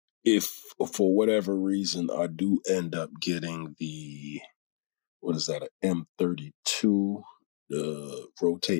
if for whatever reason I do end up getting the, what is that, an M32, the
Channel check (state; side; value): silent; right; digital silence